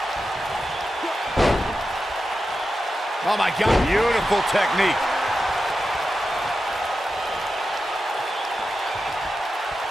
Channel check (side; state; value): both; normal; correlation 0.91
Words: Oh my God, beautiful technique.